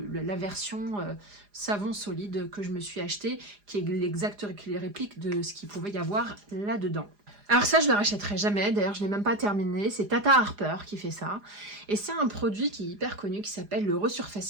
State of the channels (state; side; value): late; left; 4.9 ms